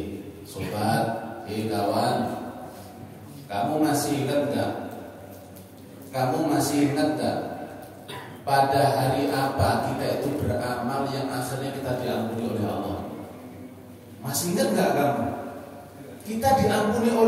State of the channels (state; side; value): identical; both; correlation 1.00